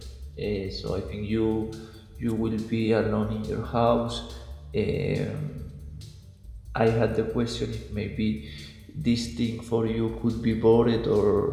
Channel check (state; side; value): identical; both; correlation 1.00